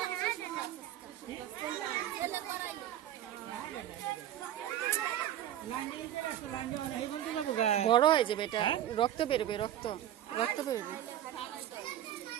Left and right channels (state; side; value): quieter; left; 11.7 dB